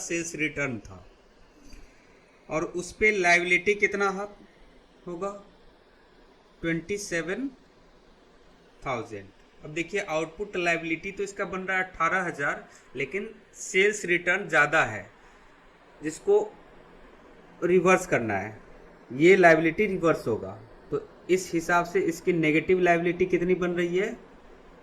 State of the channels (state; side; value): identical; both; correlation 1.00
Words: रिटर्न था, और उस पर लायबिलिटी कितना होगा? 27,000। अब देखिए आउटपुट लायबिलिटी तो इसका बन रहा है 18,000, लेकिन सेल्स रिटर्न ज़्यादा है, जिसको रिवर्स करना है। ये लायबिलिटी रिवर्स होगा, तो इस हिसाब से इसकी नेगेटिव लायबिलिटी कितनी बन रही है?